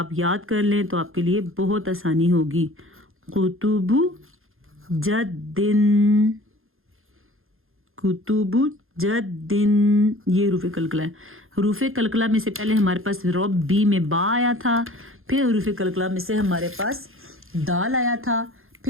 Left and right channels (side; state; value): left; late; 0.60 ms